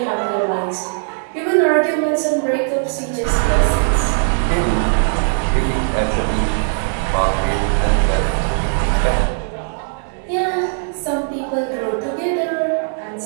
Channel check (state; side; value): silent; left; 67 dB below the other